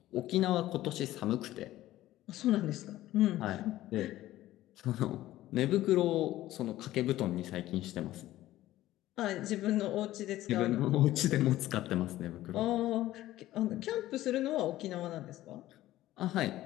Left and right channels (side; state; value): right; quieter; 15.1 dB